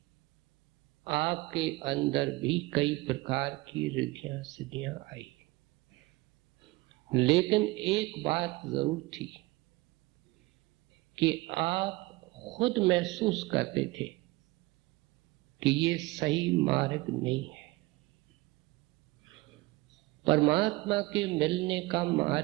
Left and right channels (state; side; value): quieter; left; 21.4 dB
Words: आपके अंदर भी कई प्रकार की रिद्धियां सिद्धियां आई, लेकिन एक बात जरूर थी कि आप खुद महसूस करते थे कि ये सही मार्ग नहीं है। परमात्मा के मिलने का